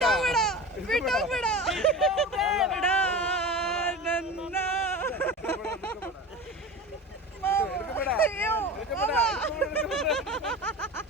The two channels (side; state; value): both; normal; correlation 0.31